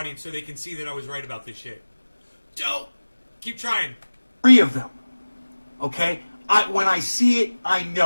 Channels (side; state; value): both; inverted; correlation -1.00